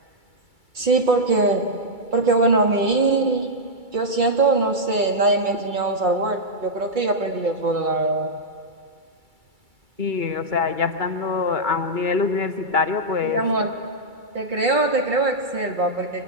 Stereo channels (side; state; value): left; late; 2.3 ms